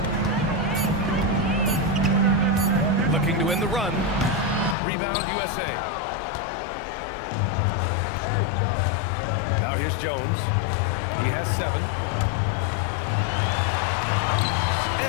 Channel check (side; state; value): right; drops out; at 4.8 s